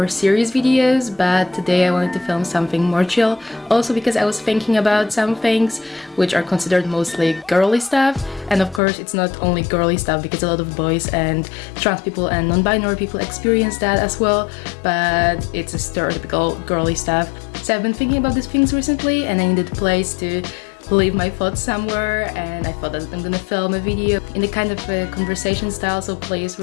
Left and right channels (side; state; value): right; drops out; at 8.8 s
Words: serious videos, but today I wanted to film something more chill. Also because I was thinking about some things which are considered mostly girly stuff. And of course it's not only girly stuff because a lot of boys and trans people and non-binary people experience that as well. But it's a stereotypical girly stuff. So I've been thinking about these things recently and I needed a place to leave my thoughts somewhere, and I thought that I'm gonna film a video in the kind of a conversation style, so please